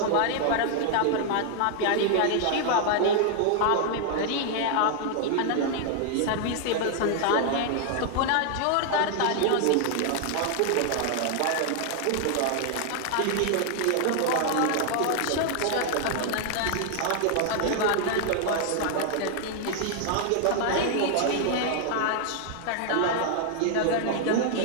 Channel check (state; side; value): different; both; correlation 0.00